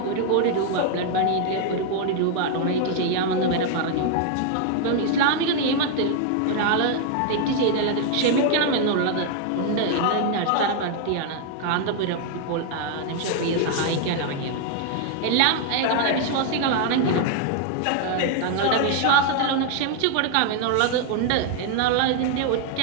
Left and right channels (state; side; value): different; both; correlation 0.00